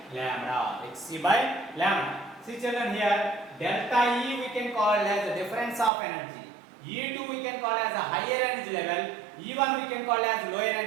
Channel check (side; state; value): left; drops out; at 5.9 s